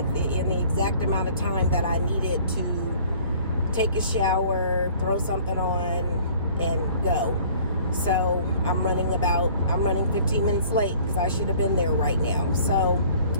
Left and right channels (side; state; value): both; inverted; correlation -0.53